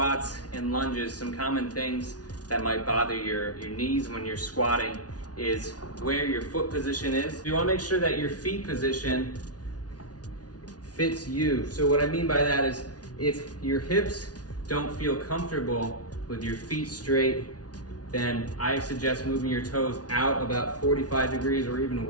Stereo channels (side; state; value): right; late; 0.69 ms